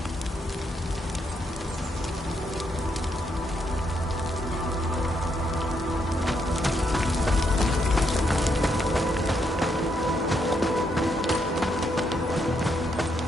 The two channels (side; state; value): both; normal; correlation 0.77